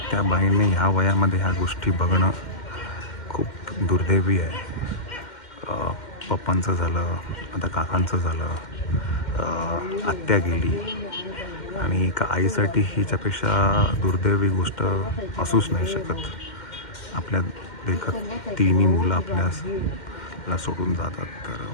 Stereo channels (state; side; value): late; right; 2.1 ms